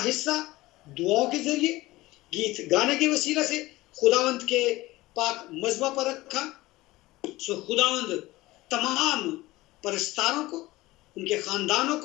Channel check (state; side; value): quieter; right; 18.8 dB